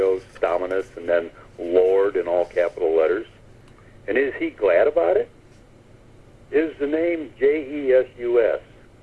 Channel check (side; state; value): both; identical; correlation 1.00